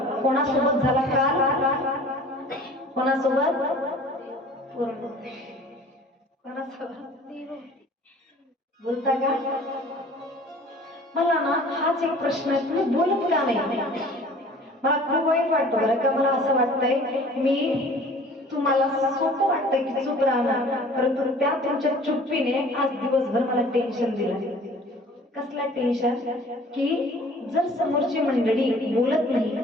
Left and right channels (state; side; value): normal; both; correlation 0.48